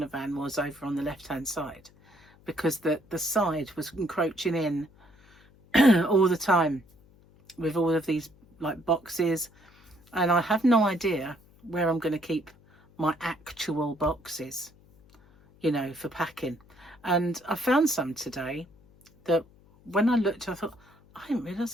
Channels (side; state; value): left; noise; hum, 28 dB below the sound